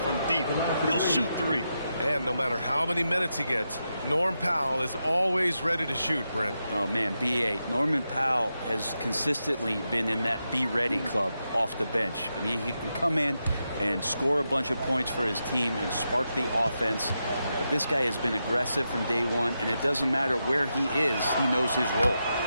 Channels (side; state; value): both; inverted; correlation -0.87